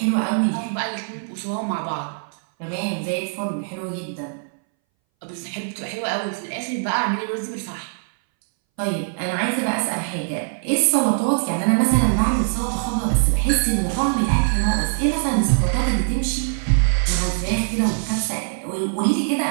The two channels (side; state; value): left; silent; 62 dB below the other